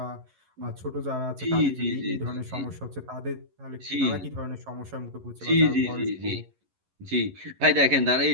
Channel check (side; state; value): left; late; 11 ms